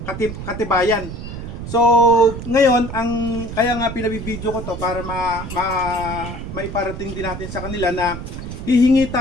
katibayan. So ngayon kaya nga pinabibideo ko to para maiparating din natin sa kanila na hihingi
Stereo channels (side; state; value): right; noise; rumble, 8 dB below the sound